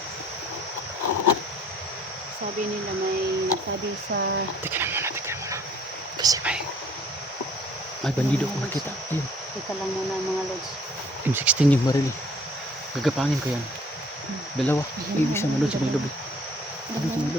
sabi nila may sabi sa Teka lang muna. Kasi may bandido ko nakita. Ayun. teka lang muna mga lods. M16 yung baril. Gagapangin ko yan. Dalawa. Ay, isa na doon sa may lobby.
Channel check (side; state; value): both; normal; correlation 0.56